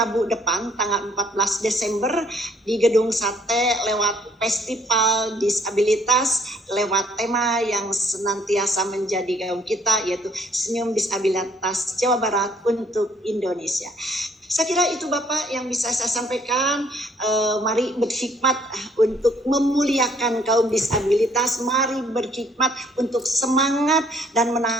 depan tanggal 14 Desember di Gedung Sate lewat Festival Disabilitas, lewat tema yang senantiasa menjadi gaung kita, yaitu Senyum Disabilitas Jawa Barat untuk Indonesia. Saya kira itu Bapak yang bisa saya sampaikan. Mari berhikmat untuk memuliakan kaum disabilitas. Mari berhikmat untuk semangat dan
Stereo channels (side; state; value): both; normal; correlation 0.63